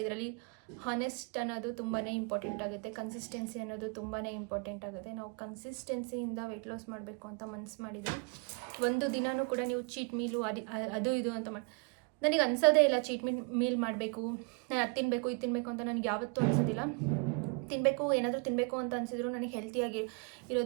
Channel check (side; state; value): left; quieter; 34.7 dB